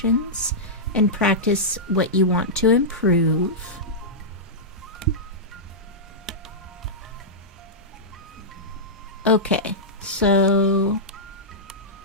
and practice what you want to improve. Okay, so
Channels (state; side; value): normal; both; correlation -0.11